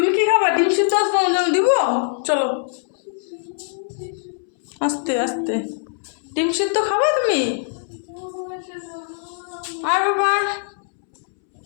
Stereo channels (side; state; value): right; silent; 64 dB below the other